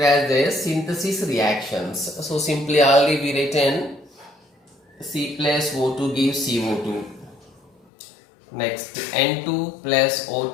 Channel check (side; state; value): right; drops out; at 7.7 s